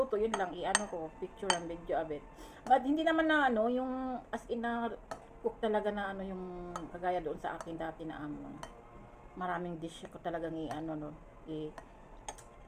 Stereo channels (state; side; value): identical; both; correlation 1.00